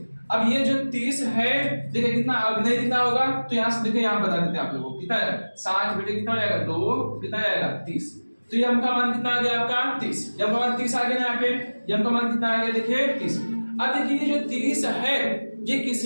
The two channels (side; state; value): both; inverted; correlation -1.00